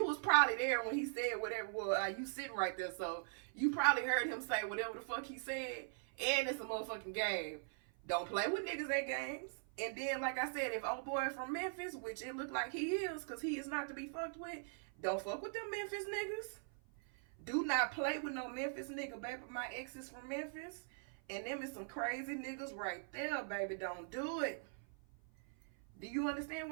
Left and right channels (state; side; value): silent; left; 50 dB below the other